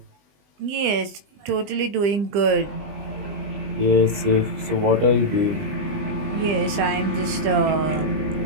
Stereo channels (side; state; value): left; late; 20 ms